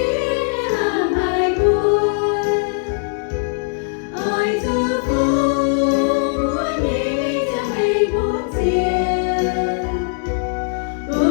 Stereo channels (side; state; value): right; silent; 60 dB below the other